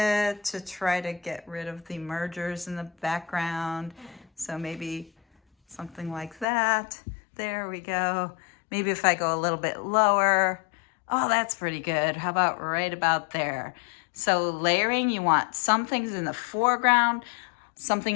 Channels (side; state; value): right; drops out; at 6.5 s